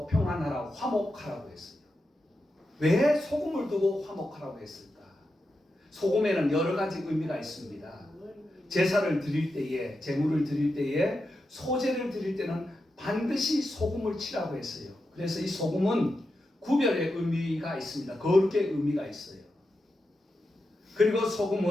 평안하라, 화목하라고 했어요. 왜 소금을 두고 화목하라고 했을까? 소금에는 여러 가지 의미가 있습니다. 제사를 드릴 때에, 제물을 드릴 때에, 소제를 드릴 때는 반드시 소금을 치라고 했어요. 그래서 이 소금은 구별의 의미가 있습니다. 거룩의 의미가 있어요. 그리고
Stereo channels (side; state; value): both; normal; correlation 0.88